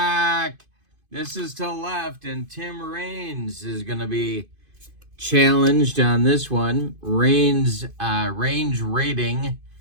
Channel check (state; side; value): late; left; 2.5 ms